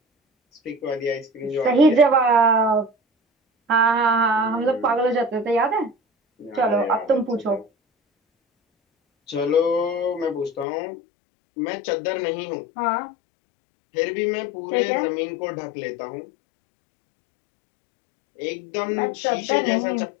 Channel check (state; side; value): drops out; right; at 10.7 s